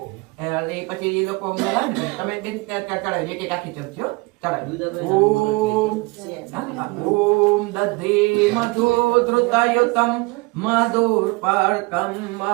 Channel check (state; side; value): quieter; left; 25.7 dB